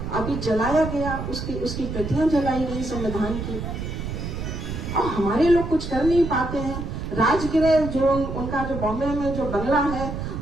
अभी जलाया गया, उसकी प्रतियां जलाई गई संविधान की। और हमारे लोग कुछ कर नहीं पाते हैं। राजगृह जो उनका जो बॉम्बे में जो बंगला है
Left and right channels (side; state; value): right; noise; rumble, 6 dB below the sound